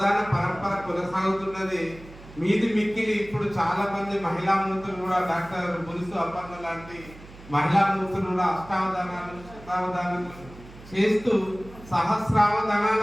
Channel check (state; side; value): noise; right; hum, 19 dB below the sound